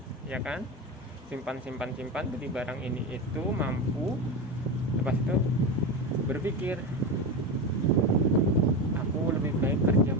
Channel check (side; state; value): both; normal; correlation 0.19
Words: ya kan, simpan beli barang ini itu mampu. Lepas itu berpikir aku lebih baik kerja